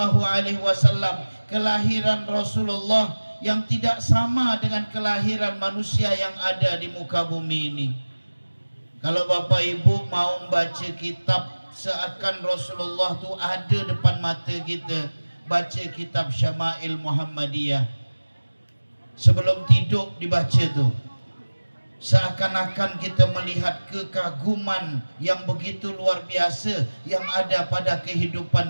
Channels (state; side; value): inverted; both; correlation -1.00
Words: Alaihi Wasallam, kelahiran Rasulullah yang tidak sama dengan kelahiran manusia yang ada di muka bumi ini. Kalau Bapak Ibu mau baca kitab seakan Rasulullah tu ada depan mata kita, baca kitab Syama'il Muhammadiyah. Sebelum tidur dibaca tu, seakan-akan kita melihat kekaguman yang begitu luar biasa yang ada pada kehidupan